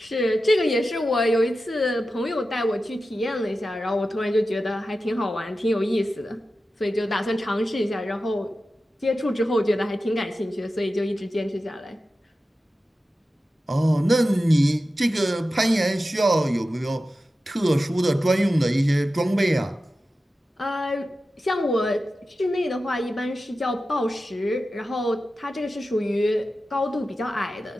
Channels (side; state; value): both; normal; correlation 0.93